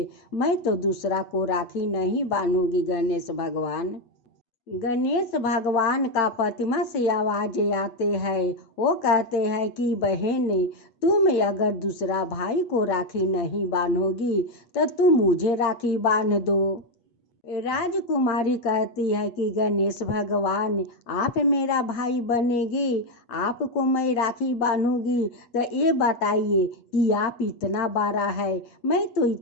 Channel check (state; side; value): late; right; 8.3 ms